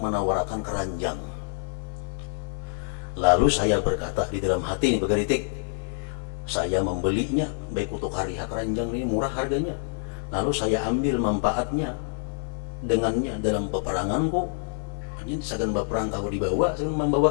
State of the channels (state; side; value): silent; right; 61 dB below the other